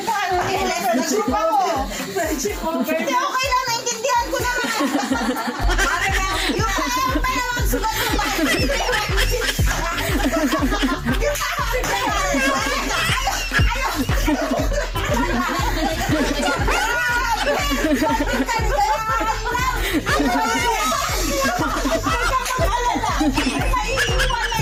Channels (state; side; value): identical; both; correlation 1.00